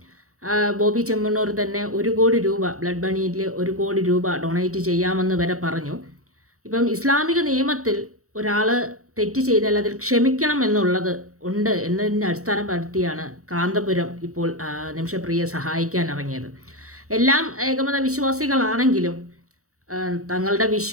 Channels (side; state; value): left; late; 0.65 ms